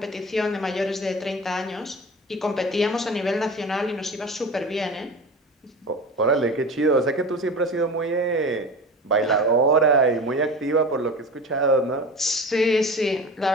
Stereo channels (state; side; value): normal; both; correlation 0.33